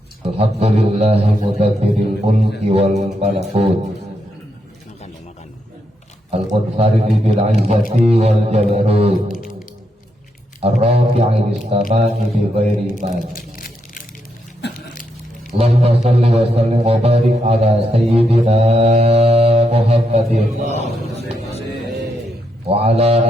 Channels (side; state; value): both; normal; correlation 0.80